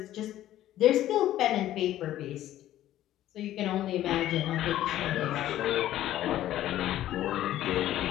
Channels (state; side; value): quieter; right; 13.3 dB